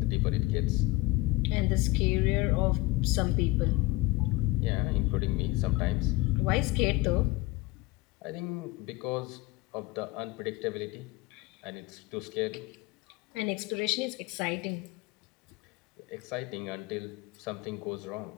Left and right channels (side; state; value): right; quieter; 20.7 dB